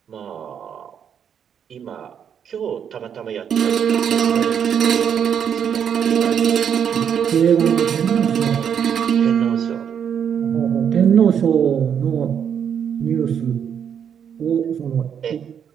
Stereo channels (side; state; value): left; quieter; 8.1 dB